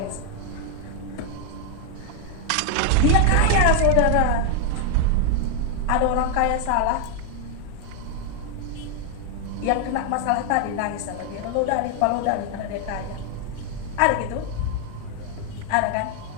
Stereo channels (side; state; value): both; different; correlation 0.00